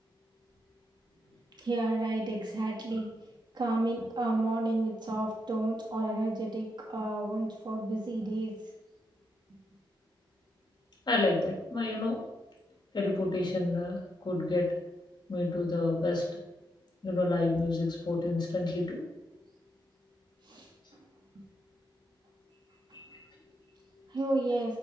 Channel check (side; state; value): both; normal; correlation 0.81